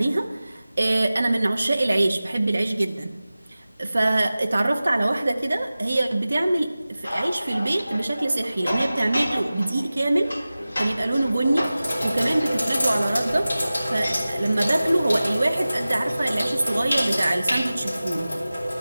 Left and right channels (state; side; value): inverted; both; correlation -0.97